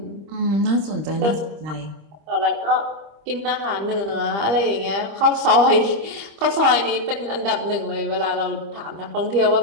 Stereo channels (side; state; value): left; late; 25 ms